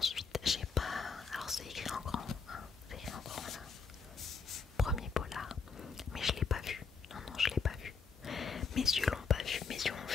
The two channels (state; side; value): quieter; right; 5.4 dB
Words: j'ai pas, alors c'est écrit en grand, hein, c'est écrit en grand là, premier polar, mais je l'ai pas vu, non, je l'ai pas vu, mes yeux l'ont pas vu, mes yeux ont